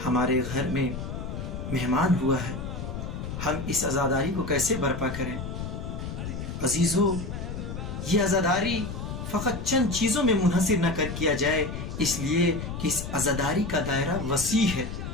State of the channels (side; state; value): left; noise; rumble, 6 dB below the sound